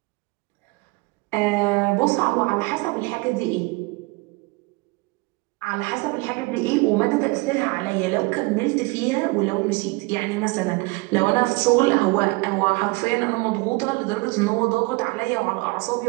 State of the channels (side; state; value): left; quieter; 25.6 dB